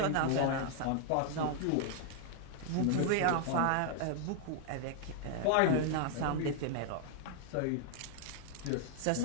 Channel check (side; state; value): both; different; correlation 0.00